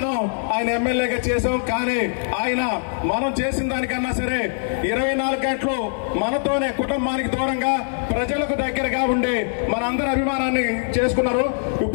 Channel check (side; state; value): right; silent; digital silence